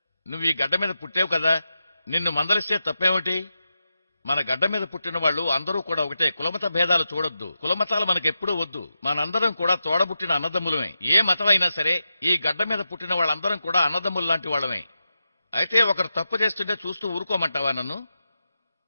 నువ్వు ఈ గడ్డ మీద పుట్టావు కదా, నిన్ను మందలిస్తే తప్పేమిటి? మన గడ్డ మీద పుట్టిన వాళ్ళు అందరూ కూడా ఒకటే. కులమత భేదాలు చూడొద్దు, కులమతాలు మనకెప్పుడూ వద్దు. మనందరం కూడా తోడబుట్టిన అన్నదమ్ములమే. ఏ మతమైనా సరే ఈ గడ్డ మీద పుట్టిన వాళ్ళందరం కూడా అన్నదమ్ములు లాంటి వాళ్ళమే. అయితే ఒకరు తప్పు చేస్తుంటే చూస్తూ ఊరుకోమంటావా నన్ను?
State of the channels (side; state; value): both; inverted; correlation -0.89